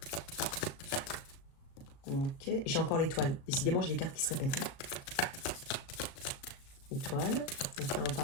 Ok. J'ai encore l'étoile. Décidément, j'ai des cartes qui se répètent. Hein. Étoile. Donc là, on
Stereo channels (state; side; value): late; right; 37 ms